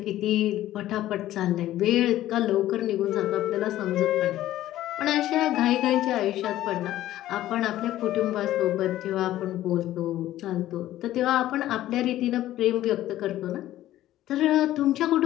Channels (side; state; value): right; quieter; 14.0 dB